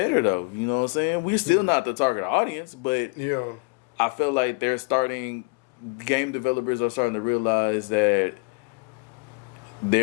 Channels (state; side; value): quieter; right; 31.7 dB